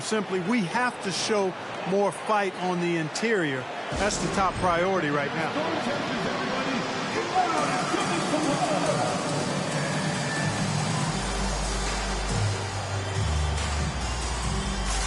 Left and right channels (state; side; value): identical; both; correlation 1.00